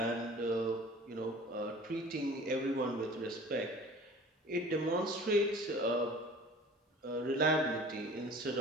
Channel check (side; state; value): both; normal; correlation 0.44